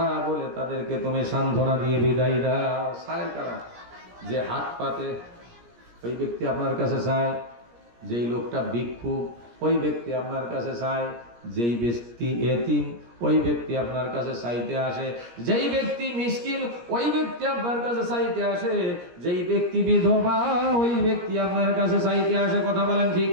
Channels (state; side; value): late; left; 17 ms